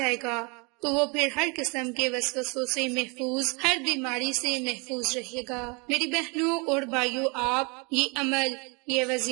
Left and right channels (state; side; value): quieter; left; 31.1 dB